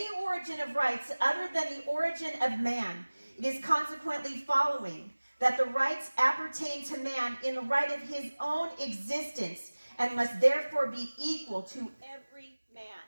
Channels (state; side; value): inverted; both; correlation -1.00